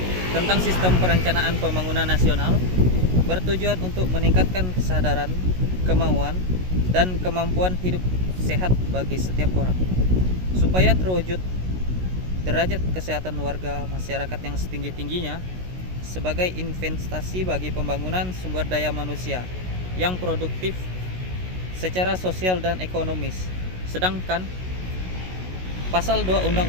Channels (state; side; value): late; left; 16 ms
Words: tentang Sistem Perencanaan Pembangunan Nasional bertujuan untuk meningkatkan kesadaran, kemauan, dan kemampuan hidup sehat bagi setiap orang supaya terwujud derajat kesehatan warga masyarakat yang setinggi-tingginya sebagai investasi bagi pembangunan sumber daya manusia yang produktif secara sosial dan ekonomis. Sedangkan Pasal 2